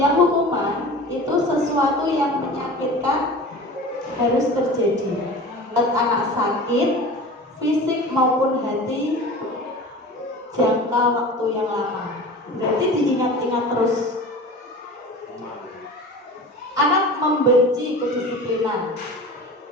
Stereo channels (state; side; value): normal; both; correlation 0.36